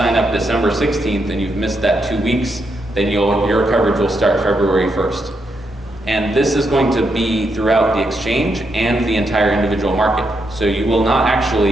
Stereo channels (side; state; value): both; normal; correlation 0.81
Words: up December 16th and you've missed that 2 weeks, then your coverage will start February 1st. And this is going to be throughout the exchange and the entire individual market. So you will not